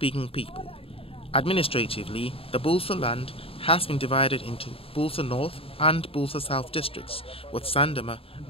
people. Administratively, the Bulsa land has been divided into Bulsa North and Bulsa South districts, with Sandema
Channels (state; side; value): late; right; 0.27 ms